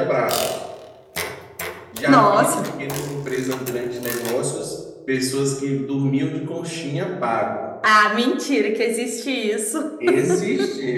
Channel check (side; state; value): both; identical; correlation 1.00